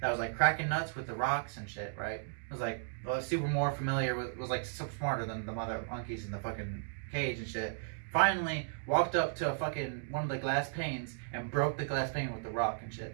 that was like cracking nuts with the rocks and shit, right? Was like super more familiar with, was like super smarter than the other monkeys in the fucking cage and shit. Finally walked up to a fucking one of the glass panes and broke the glass pane with the rock and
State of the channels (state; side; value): silent; left; digital silence